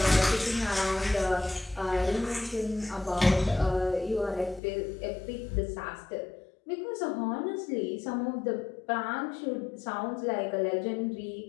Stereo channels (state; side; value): drops out; right; at 4.6 s